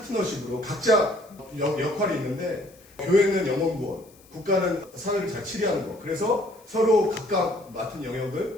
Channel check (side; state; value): left; noise; hiss, 27 dB below the sound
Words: 각자 역할이 있는데, 교회는 영혼구원, 국가는 사회를 잘 치리하는 거. 그래서 서로 각각 맡은